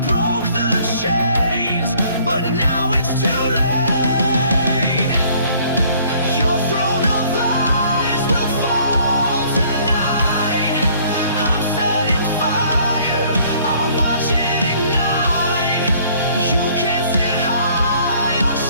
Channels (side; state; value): both; inverted; correlation -0.58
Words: but now it's too late. Your throne of lies will fall tonight. I'm setting fire, I'll watch it ignite. You can't sit high on